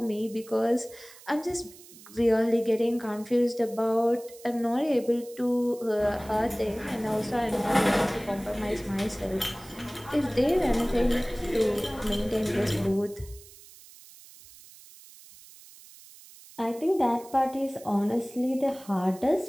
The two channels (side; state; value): right; noise; hiss, 21 dB below the sound